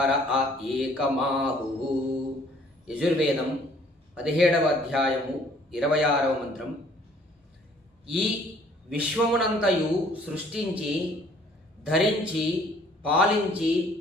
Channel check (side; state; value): both; normal; correlation 0.58